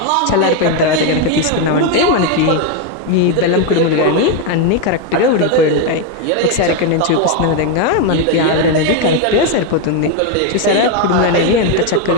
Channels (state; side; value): different; both; correlation 0.02